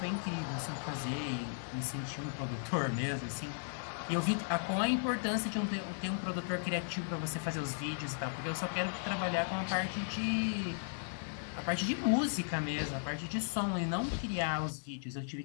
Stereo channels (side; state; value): right; silent; digital silence